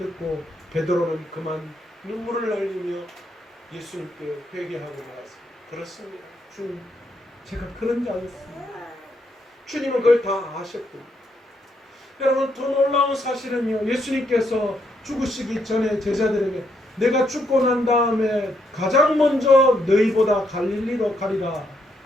베드로는 그만 눈물을 흘리며 예수님께 회개하고 나왔습니다. 그렇습니다. 주님, 제가 그런 자였습니다. 주님은 그걸 다 아셨군요. 여러분, 더 놀라운 사실은요, 예수님께서 죽으시기 전에 제자들에게 내가 죽고 난 다음에 가장 먼저 너희보다 갈릴리로 가리라,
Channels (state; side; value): normal; both; correlation 0.76